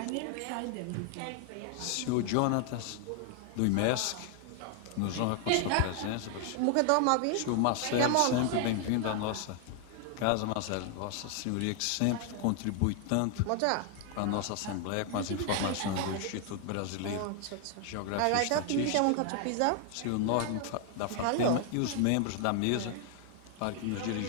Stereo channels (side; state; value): both; different; correlation 0.00